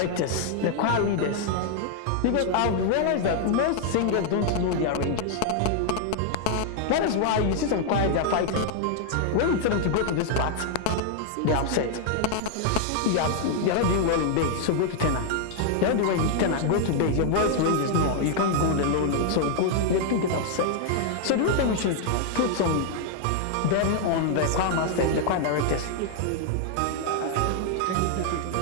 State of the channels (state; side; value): different; both; correlation 0.00